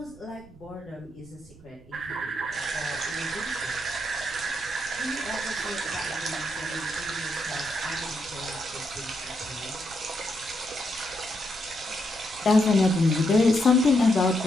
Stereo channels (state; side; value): noise; right; rumble, 22 dB below the sound